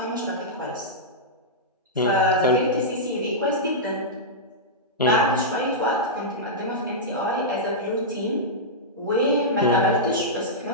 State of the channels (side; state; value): both; normal; correlation -0.11